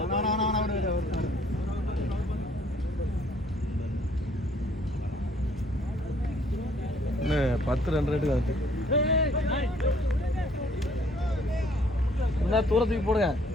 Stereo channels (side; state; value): both; normal; correlation 0.61